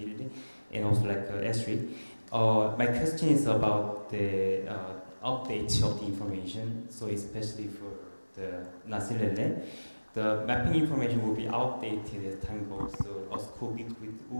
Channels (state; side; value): inverted; both; correlation -1.00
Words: and also Esri. My question is about the update of the information. So especially for the Nasilele, the mapping information will be outdated as time goes. So a school